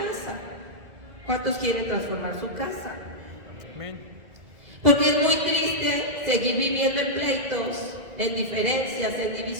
¿Cuántos quieren transformar su casa? Amén. Porque es muy triste seguir viviendo en pleitos, en diferencias, en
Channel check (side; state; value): left; late; 2.0 ms